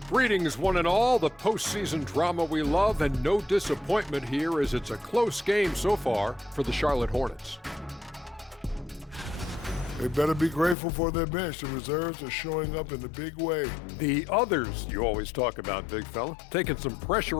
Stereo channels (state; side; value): drops out; right; at 10.8 s